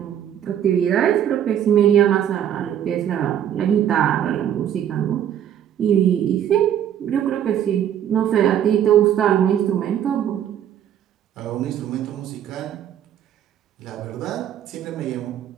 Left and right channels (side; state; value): left; quieter; 10.0 dB